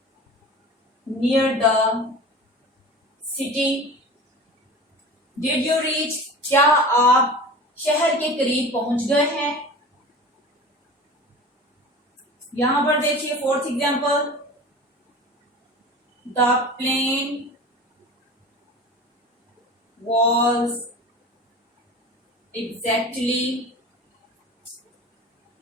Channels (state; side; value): normal; both; correlation 0.36